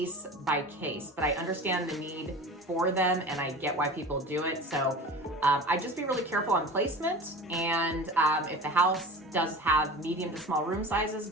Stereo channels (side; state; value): both; normal; correlation 0.36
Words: by case, but I understand the need for them and I get why people do it. So I just be really careful on placement. And if the house does have medium to small room sizes,